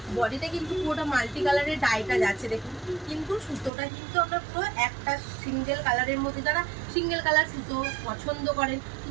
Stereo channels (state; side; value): drops out; left; at 3.7 s